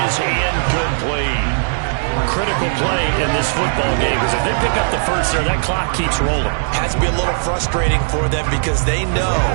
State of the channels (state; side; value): silent; left; 66 dB below the other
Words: is incomplete. Critical play in this football game, because if they pick up the first there, that clock keeps rolling. Has to be a little frustrating for them because they know